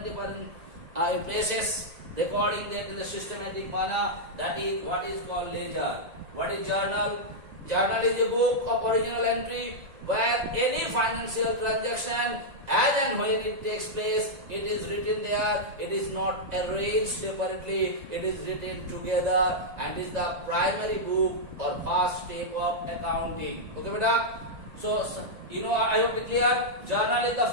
places, recording that in the systematic manner. That is what is called ledger. What is journal? Journal is a book of original entry where any financial transaction, as and when it takes place, it is written there. It is not arranged separately. It is written together, and is the primary book or first step of accounting. Okay, beta? So, I hope it clear. Journal is the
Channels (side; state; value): left; late; 2.0 ms